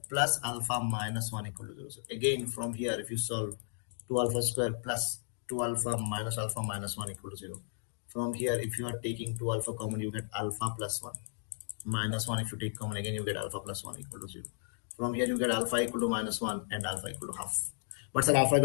plus alpha minus 1 equal to 0. So again, from here, if you solve 2 alpha square plus 2 alpha minus 1 equal to 0. From here, if you are taking 2 alpha common, you get alpha plus 1. Minus 1, if you take common, again you get alpha plus 1 equal to 0. From here, you get alpha equal to minus 1 and alpha equal to half. But sir, alpha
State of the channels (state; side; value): silent; right; digital silence